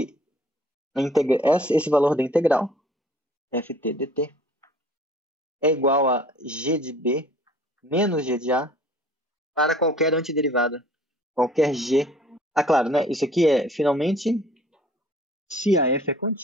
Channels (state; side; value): normal; both; correlation 0.52